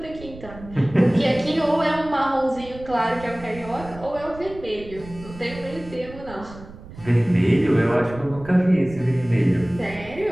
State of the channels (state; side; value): noise; right; rumble, 17 dB below the sound